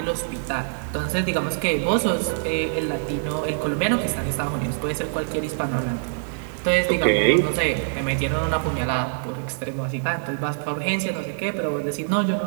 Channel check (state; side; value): silent; left; 62 dB below the other